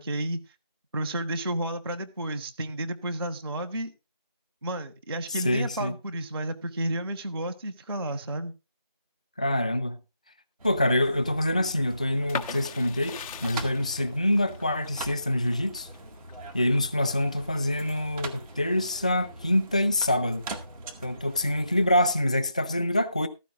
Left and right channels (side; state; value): both; inverted; correlation -0.81